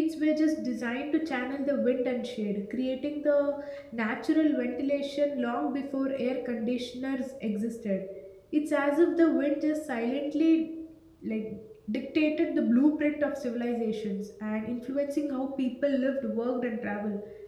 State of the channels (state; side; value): identical; both; correlation 1.00